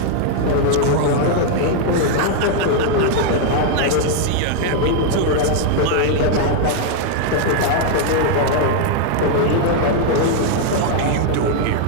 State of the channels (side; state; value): both; different; correlation 0.00